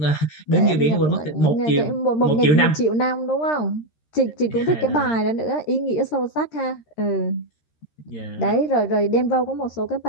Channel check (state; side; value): late; right; 13 ms